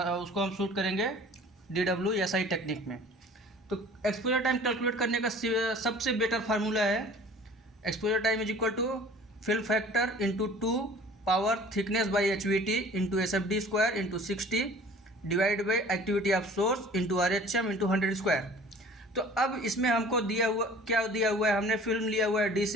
हम शूट करेंगे DWSI टेक्निक में। तो एक्सपोजर टाइम कैलकुलेट करने का सबसे बेटर फार्मूला है, exposure time is equal to film factor into 2 power thickness by HVT into SFD square into 60 divide by activity of source into RHM into 100 square. तो अब इसमें हमको दिया हुआ है, हमने फिल्म लिया हुआ है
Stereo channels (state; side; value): normal; both; correlation 0.47